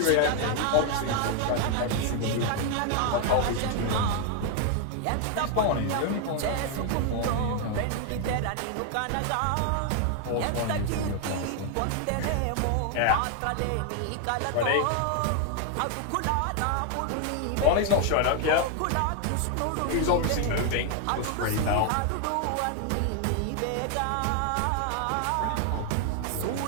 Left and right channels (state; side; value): different; both; correlation 0.00